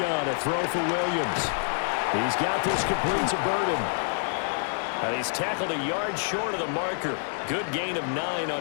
a throw for Williams. He's got this complete to Burden. And he's tackled a yard short of the marker. Good gain of 9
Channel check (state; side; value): silent; right; 60 dB below the other